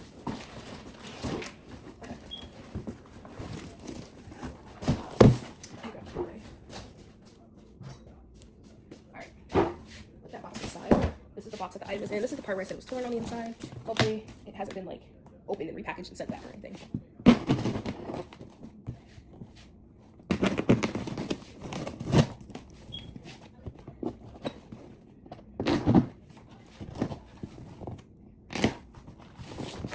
Alright, put that box aside. This is the box that the item is in. This is the part where I said it was torn on the inside. Hopefully it hasn't been like opened and repackaged and sent back or anything.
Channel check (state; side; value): identical; both; correlation 1.00